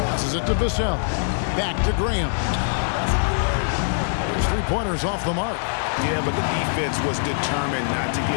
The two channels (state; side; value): silent; right; digital silence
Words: Passes it to Vassell. Back to Graham. His three-pointers off the mark. Yeah, but the defense was determined not to